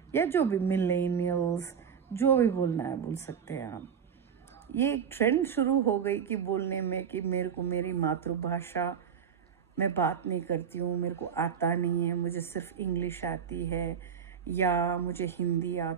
या जो भी मिलेनियल्स, जो भी बोलना है बोल सकते हैं आप। ये एक ट्रेंड शुरू हो गई कि बोलने में कि मेरे को मेरी मातृभाषा में बात नहीं करती हूँ, मेरे को आता नहीं है, मुझे सिर्फ इंग्लिश आती है, या मुझे हिंदी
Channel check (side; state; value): left; quieter; 7.4 dB